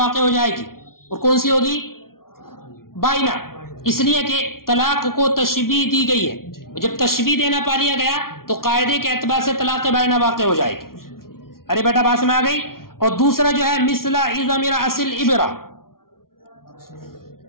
ہو جائے گی، اور کون سی ہوگی؟ بائنہ، اس لیے کہ طلاق کو تشبیہ دی گئی ہے، جب تشبیہ دینا پا لیا گیا تو قاعدے کے اعتبار سے طلاق بائنہ واقع ہو جائے گی۔ ارے بیٹا بات میں آ گئی؟ اور دوسرا جو ہے مثل عظم رأس الابرہ،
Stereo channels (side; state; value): right; late; 0.93 ms